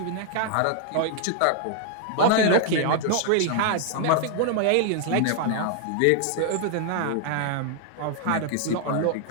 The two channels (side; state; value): both; different; correlation 0.00